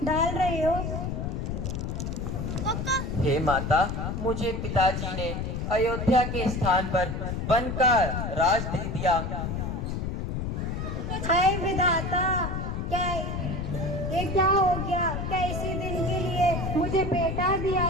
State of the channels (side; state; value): left; noise; rumble, 3 dB below the sound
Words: डाल रहे हो। हे माता, मुझे पिताजी ने अयोध्या के स्थान पर वन का राज दे दिया। हाय विधाता, क्या ये क्या हो गया? क्या इसी दिन के लिए मुझे बेटा दिया